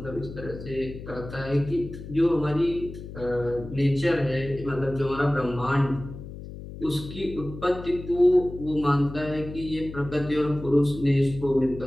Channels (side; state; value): left; noise; hum, 12 dB below the sound